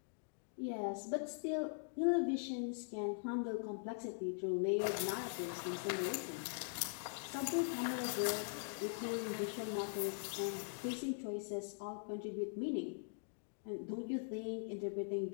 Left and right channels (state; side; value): silent; right; digital silence